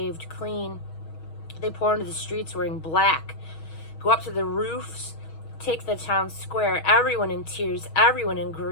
clean. They pour into the streets wearing black, go up to the roofs, take the town square, everyone in tears, everyone in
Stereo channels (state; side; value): late; right; 6.3 ms